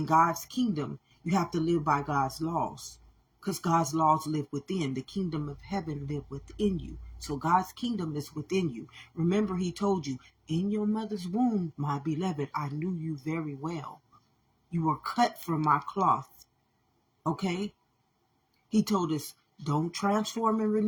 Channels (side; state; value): both; identical; correlation 1.00